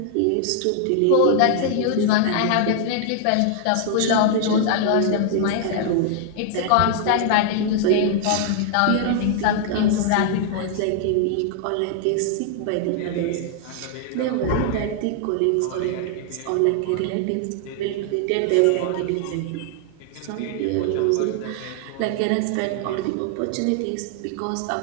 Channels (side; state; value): both; different; correlation 0.00